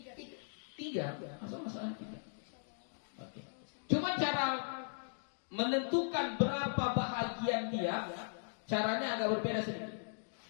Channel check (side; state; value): right; silent; digital silence